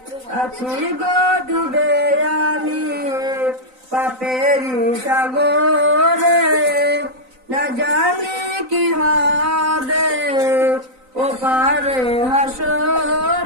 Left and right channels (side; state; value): left; late; 3.9 ms